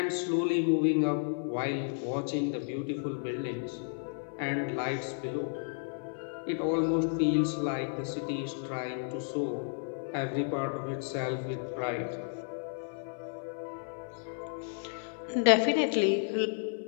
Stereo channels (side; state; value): right; silent; 56 dB below the other